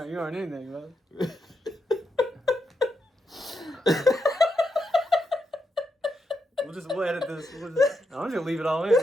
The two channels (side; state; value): both; normal; correlation 0.83